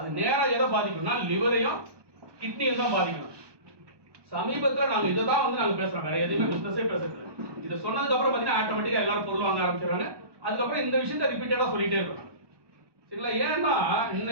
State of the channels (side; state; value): left; late; 1.2 ms